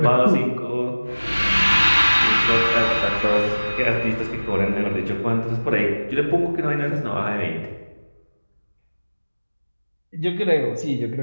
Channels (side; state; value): both; inverted; correlation -1.00